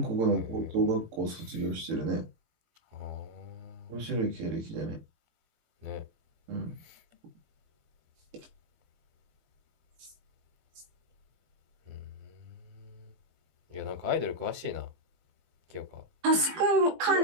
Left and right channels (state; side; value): late; left; 18 ms